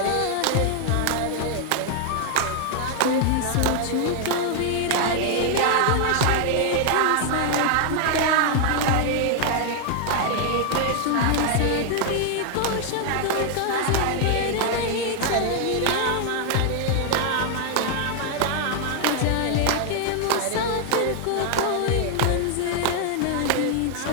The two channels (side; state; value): both; different; correlation 0.00